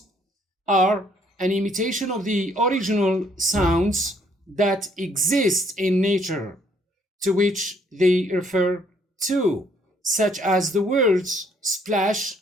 are an imitation of the original sounds that exist in nature to which they refer to, such as the words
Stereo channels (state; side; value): normal; both; correlation 0.66